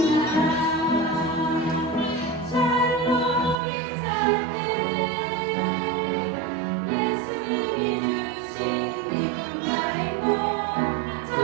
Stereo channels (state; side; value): drops out; left; at 3.6 s